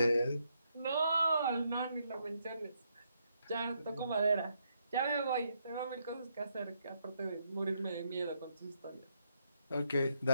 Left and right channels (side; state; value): both; inverted; correlation -0.77